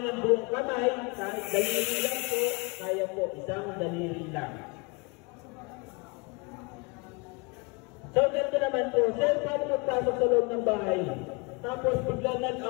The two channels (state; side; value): quieter; right; 29.9 dB